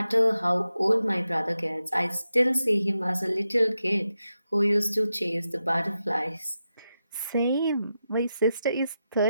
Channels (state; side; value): inverted; both; correlation -0.89